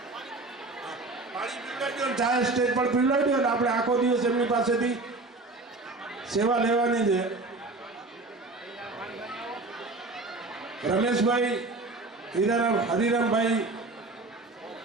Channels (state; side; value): quieter; left; 3.3 dB